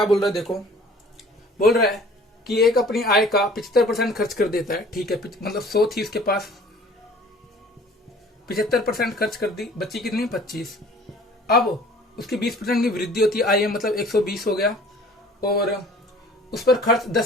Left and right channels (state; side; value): normal; both; correlation 0.50